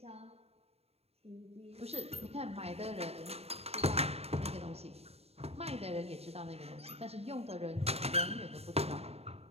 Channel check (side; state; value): left; late; 0.30 ms